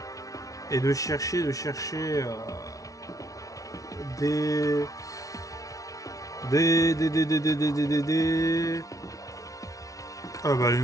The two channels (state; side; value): late; right; 0.17 ms